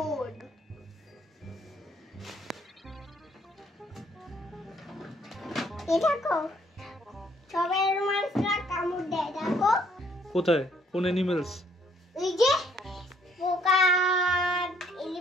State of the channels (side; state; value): both; normal; correlation 0.65